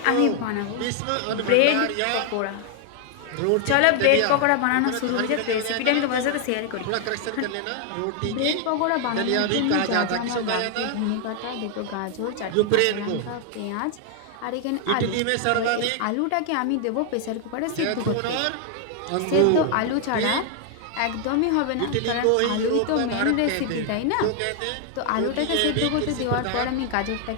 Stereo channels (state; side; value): different; both; correlation 0.00